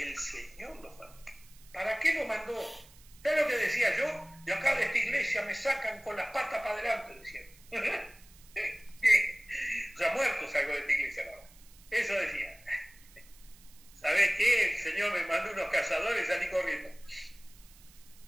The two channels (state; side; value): noise; right; hiss, 24 dB below the sound